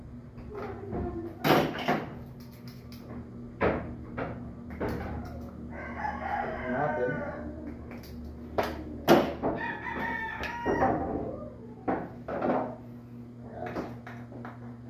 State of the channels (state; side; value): identical; both; correlation 1.00